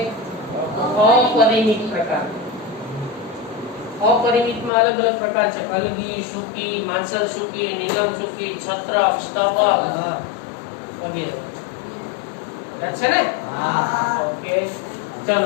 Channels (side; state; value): right; drops out; at 4.7 s